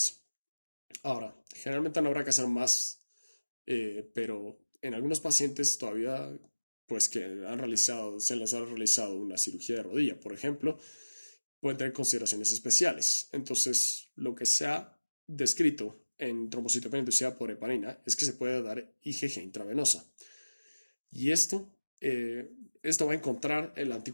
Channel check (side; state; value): both; inverted; correlation -1.00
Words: Ahora, generalmente no habrá que hacer más, pero en algunos pacientes todavía, pues que se les ha realizado una cirugía de rodilla, por ejemplo, pueden tener consideraciones especiales. Entonces, lo que se ha descrito en trombocitopenia inducida por heparina es que se puede dar IgG intravenosa. Y esto va a encontrar el